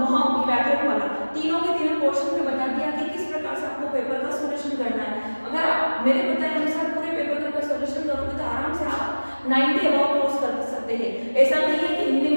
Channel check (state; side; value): inverted; both; correlation -1.00